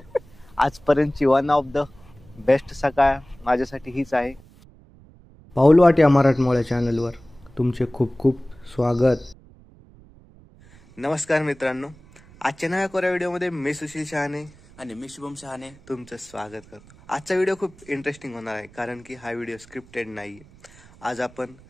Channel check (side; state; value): right; noise; rumble, 24 dB below the sound